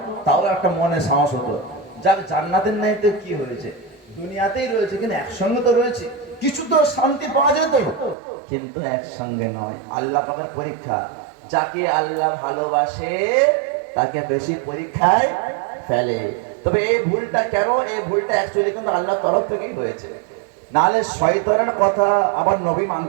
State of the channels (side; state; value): left; drops out; at 8.2 s